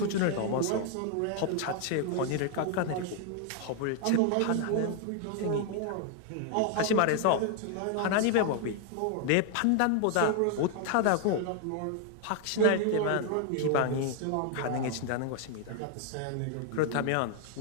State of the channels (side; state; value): both; different; correlation 0.00